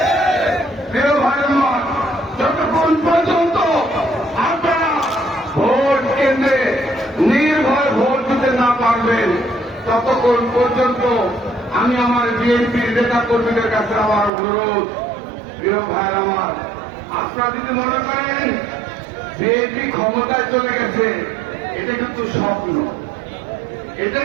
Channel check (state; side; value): drops out; left; at 14.3 s